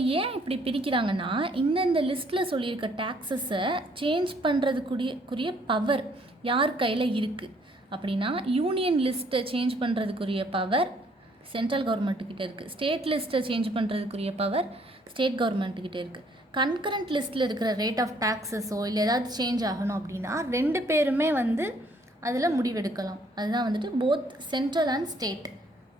ஏன் இப்படி பிரிக்கிறாங்கன்னா இந்த லிஸ்ட்டில் சொல்லியிருக்க டேக்ஸஸை சேஞ்ச் பண்ணுறதுக்குரிய பவர் யார் கையில் இருக்குது அப்படின்னா, யூனியன் லிஸ்ட்டை சேஞ்ச் பண்ணுறதுக்குரிய பவர் சென்ட்ரல் கவர்மெண்ட்டுக்கிட்ட இருக்குது. ஸ்டேட் லிஸ்ட்டை சேஞ்ச் பண்ணுறதுக்குரிய பவர் ஸ்டேட் கவர்மெண்ட்டுக்கிட்ட இருக்குது. கன்கரண்ட் லிஸ்ட்டில் இருக்கிற ரேட் ஆஃப் டேக்ஸஸோ இல்லை ஏதாவது சேஞ்ச் ஆகணும் அப்படின்னா 2 பேருமே அதில் முடிவெடுக்கலாம். அதுதான் both central and state.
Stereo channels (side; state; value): both; normal; correlation 0.64